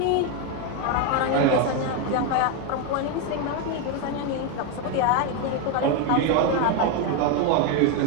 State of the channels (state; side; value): different; both; correlation 0.02